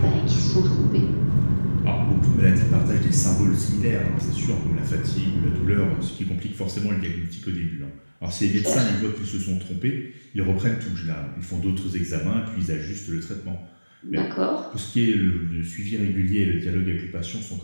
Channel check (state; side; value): inverted; both; correlation -1.00